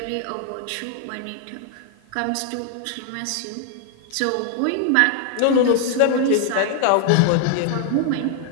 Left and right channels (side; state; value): both; different; correlation 0.00